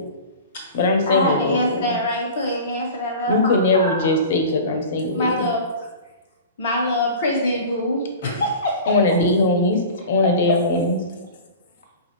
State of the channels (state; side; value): inverted; both; correlation -0.37